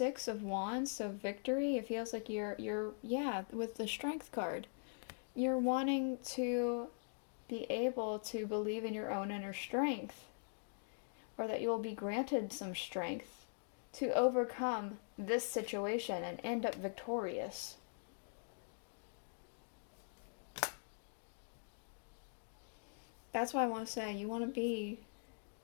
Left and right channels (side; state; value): right; silent; digital silence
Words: of Wands, so victory. It feels like you're yeah, with the Strength card, you're wanting to be able to believe in your own inner strength, or that you will be granted some strength to overcome this situation and end up victorious. That's why I want to say you want to be